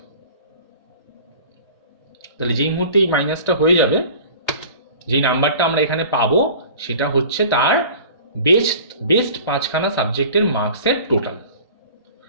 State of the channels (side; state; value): both; inverted; correlation -0.42